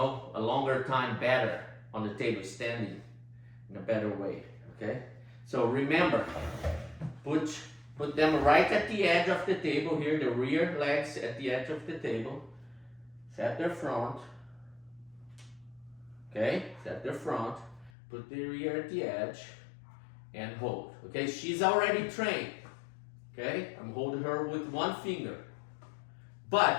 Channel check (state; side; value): drops out; right; at 17.9 s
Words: a longer time better on the table, standing in a better way. Okay. So remember, put them right at the edge of the table here, the rear legs at the edge of the table. Set their front. Okay, set their front. Put the rear at the edge and hold. Okay, she's already trained. Okay, I'm holding her with one finger.